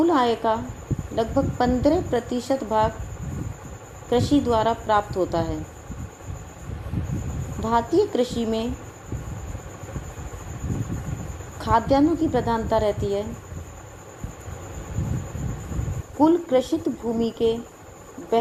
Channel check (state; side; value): identical; both; correlation 1.00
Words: आय का लगभग 15% भाग कृषि द्वारा प्राप्त होता है। भारतीय कृषि में खाद्यान्नों की प्रधानता रहती है। कुल कृषित भूमि के